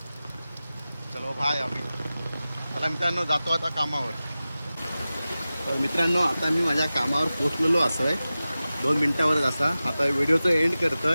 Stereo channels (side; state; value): both; inverted; correlation -0.96